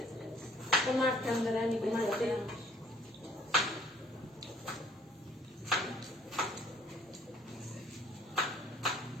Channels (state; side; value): normal; both; correlation 0.57